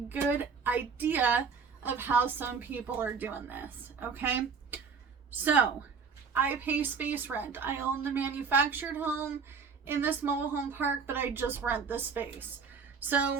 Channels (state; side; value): quieter; left; 5.5 dB